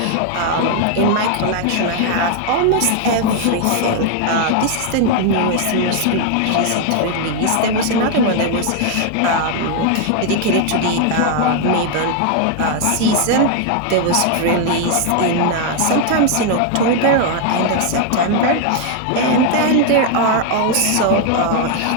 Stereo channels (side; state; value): both; different; correlation 0.00